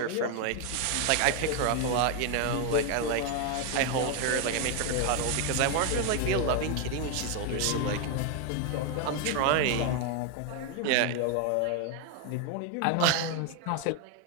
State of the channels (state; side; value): different; both; correlation 0.01